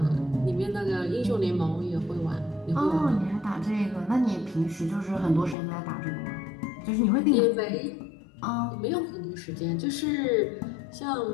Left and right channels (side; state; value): right; drops out; at 5.6 s